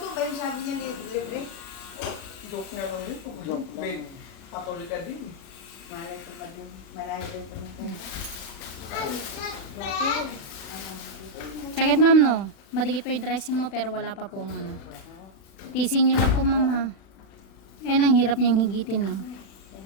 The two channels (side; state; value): right; late; 36 ms